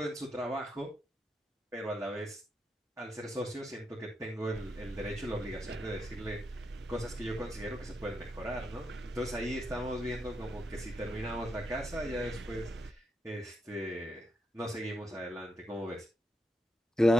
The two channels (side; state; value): both; normal; correlation 0.83